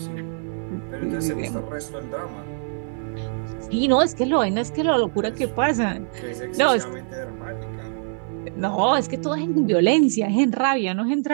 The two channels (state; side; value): silent; left; 63 dB below the other